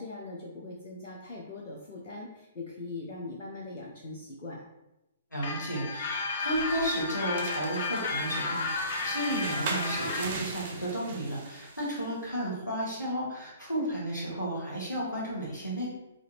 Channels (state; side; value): inverted; both; correlation -0.48